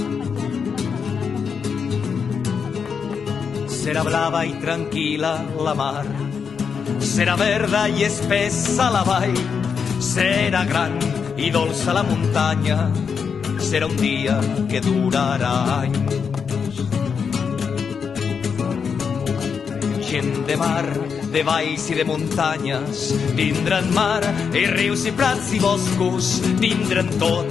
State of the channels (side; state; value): right; quieter; 6.3 dB